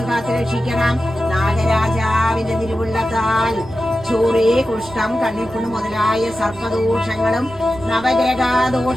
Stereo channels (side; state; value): both; normal; correlation 0.92